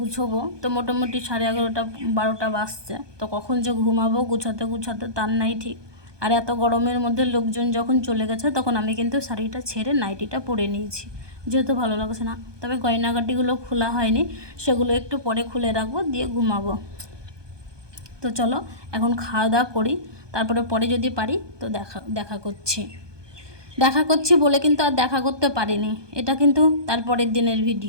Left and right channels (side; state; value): left; late; 1.2 ms